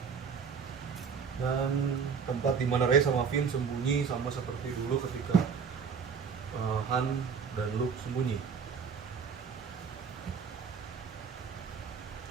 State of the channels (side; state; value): left; quieter; 6.3 dB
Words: Dan tempat di mana Rey sama Finn sembunyi sama seperti dulu ketika Han dan Luke sembunyi.